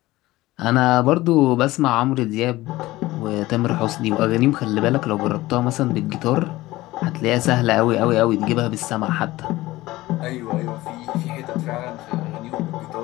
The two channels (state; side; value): quieter; right; 18.1 dB